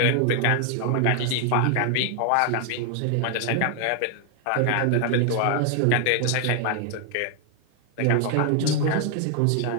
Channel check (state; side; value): different; both; correlation 0.00